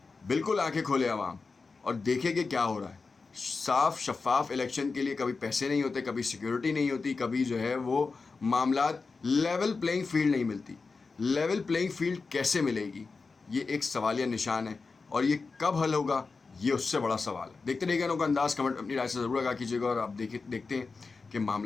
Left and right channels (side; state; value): right; quieter; 4.3 dB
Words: بالکل آنکھیں کھولے عوام اور دیکھیں کہ کیا ہو رہا ہے۔ صاف شفاف الیکشن کے لیے کبھی پیسے نہیں ہوتے، کبھی سیکیورٹی نہیں ہوتی، کبھی جو ہے وہ معاملات لیول پلینگ فیلڈ نہیں ملتی۔ لیول پلینگ فیلڈ کیسے ملے گی؟ یہ ایک سوالیہ نشان ہے، اور یہ کب حل ہوگا یہ اس سے بڑا سوال ہے۔ دیکھتے رہیے گا نوک انداز، کمنٹ اپنی رائے سے ضرور آگاہ کیجیے گا، اور آپ دیکھتے ہیں کہ